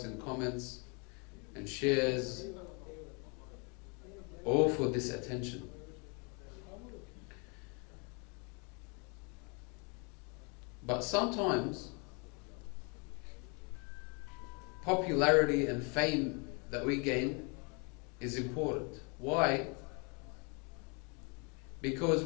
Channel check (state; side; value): quieter; right; 33.8 dB